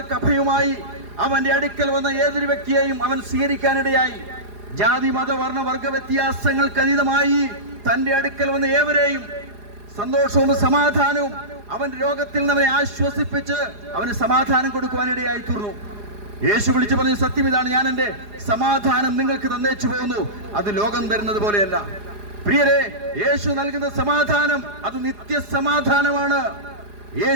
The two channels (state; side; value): late; left; 4.9 ms